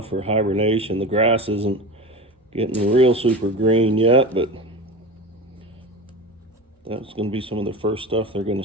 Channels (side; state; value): both; normal; correlation 0.29